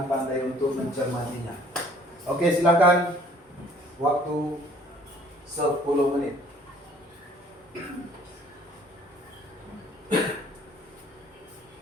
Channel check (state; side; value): normal; both; correlation 0.57